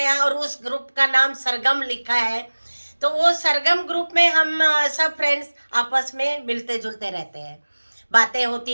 और उस ग्रुप का नाम सरगम लिखा है। तो वो सरगम ग्रुप में हम सब फ्रेंड्स आपस में मिलते जुलते रहते हैं, बातें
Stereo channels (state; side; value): inverted; both; correlation -1.00